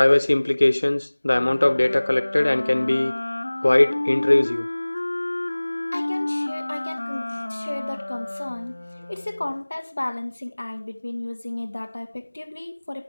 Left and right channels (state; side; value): inverted; both; correlation -1.00